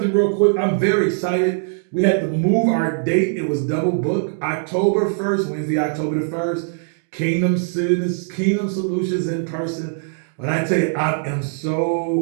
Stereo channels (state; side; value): silent; left; digital silence